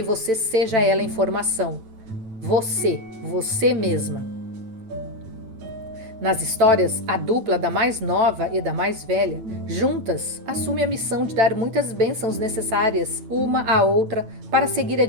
você seja ela em formação. Você mesma. Nas histórias, a dupla da mais nova e da mais velha, juntas, assume a missão de dar muitas bênçãos necessárias uma à outra para seguir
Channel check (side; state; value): left; late; 9.0 ms